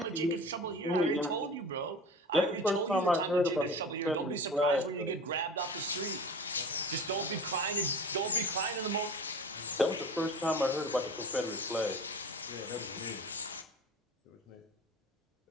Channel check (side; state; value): both; normal; correlation 0.36